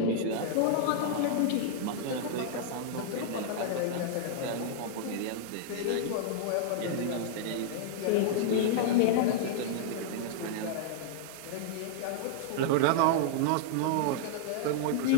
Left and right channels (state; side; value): different; both; correlation -0.01